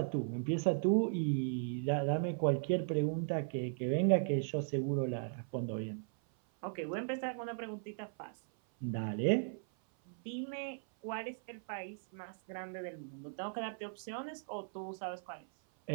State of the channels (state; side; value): silent; left; 53 dB below the other